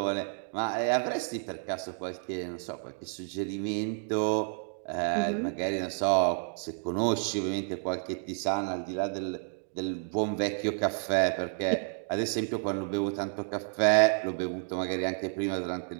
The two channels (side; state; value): left; silent; 57 dB below the other